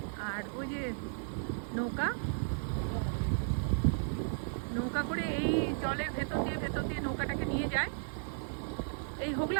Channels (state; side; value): silent; left; digital silence